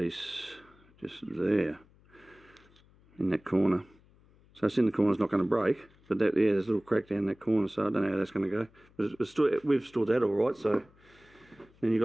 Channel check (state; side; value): noise; left; hum, 29 dB below the sound